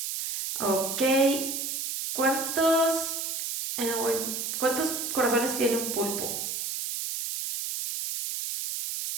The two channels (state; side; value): noise; right; hiss, 3 dB below the sound